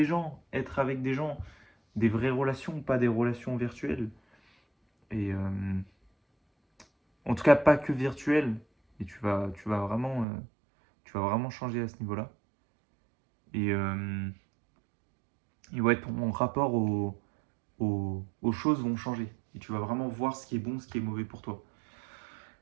gens, être avec des gens, des vraies relations, pas des relations virtuelles. Et en tout cas, pas que virtuelles. Et tu vas vraiment changer à ce niveau-là. Et, euh, et ouais, ton rapport aux choses vont changer. Et tu vas vraiment voir ce qui est bon, ce qui est mauvais pour toi.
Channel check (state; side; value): drops out; left; at 10.2 s